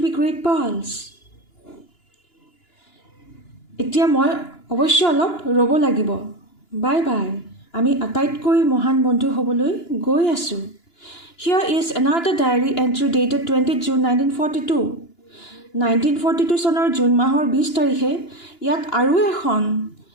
be great pals. এতিয়া মই অৱশ্য অলপ ৰ'ব লাগিব। Bye bye. আমি আটাইতকৈ মহান বন্ধু হ'বলৈ গৈ আছোঁ। Here is another diary entry dated 20 June 1942. 1942 চনৰ জুন মাহৰ 20 তাৰিখে ইয়াত আৰু এখন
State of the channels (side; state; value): right; late; 2.9 ms